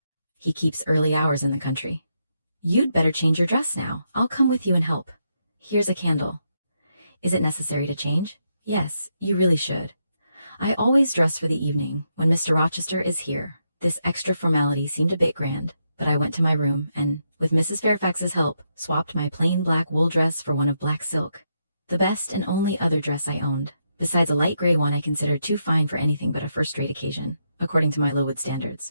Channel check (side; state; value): both; inverted; correlation -0.81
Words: He keeps early hours in the country." "You'd better change your dress now. I'll come with you and help. Here's a candle." "Is it necessary to change?" "Yes, you really should. I always dress for the evening when Mr. Rochester is here." This extra formality seemed a bit grand, but I went to my room and, with Mrs. Fairfax's help, swapped my plain black wool dress for one of black silk, the best and only other dress I owned, besides a light gray one I considered too fine for anything but a first-rate occasion, according to my Lowood